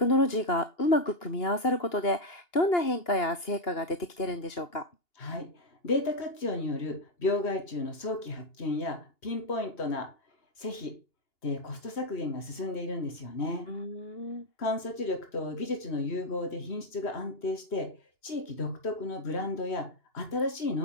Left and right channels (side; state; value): right; late; 2.8 ms